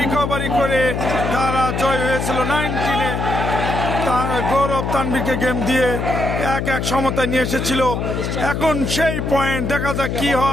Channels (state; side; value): noise; left; hum, 2 dB below the sound